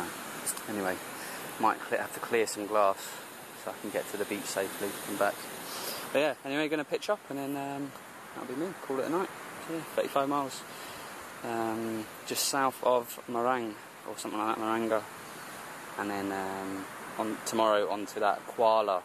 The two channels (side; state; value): both; identical; correlation 1.00